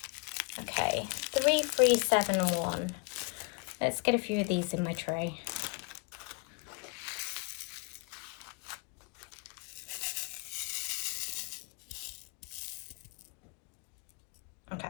Okay, 3371. Let's get a few of these in my tray. Okay,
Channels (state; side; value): quieter; right; 31.0 dB